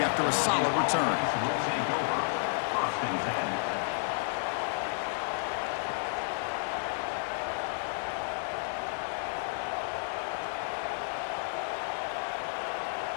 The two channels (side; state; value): right; silent; digital silence